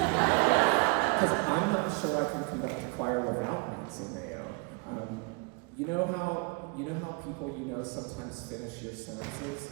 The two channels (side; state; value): left; quieter; 30.8 dB